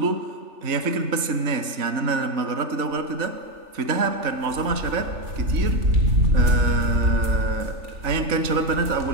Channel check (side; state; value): left; late; 3.3 ms